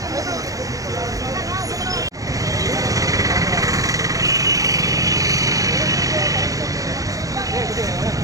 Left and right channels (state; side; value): late; left; 0.17 ms